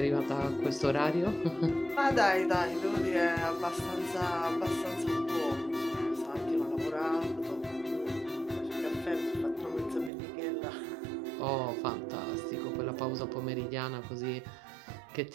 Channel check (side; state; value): left; drops out; at 10.1 s